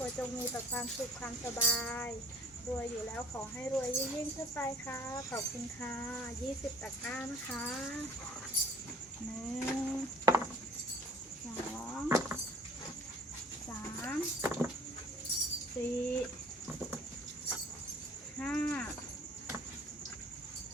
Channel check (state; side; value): normal; both; correlation 0.50